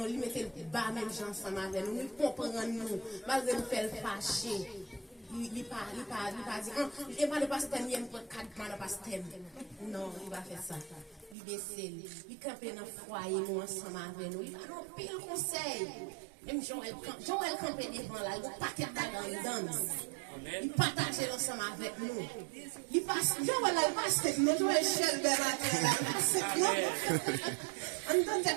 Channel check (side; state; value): left; drops out; at 11.4 s